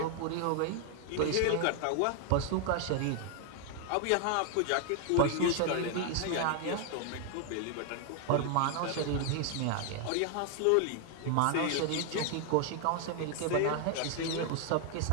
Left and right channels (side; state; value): both; different; correlation 0.00